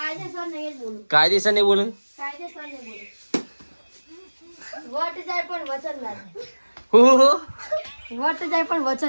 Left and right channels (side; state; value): both; inverted; correlation -1.00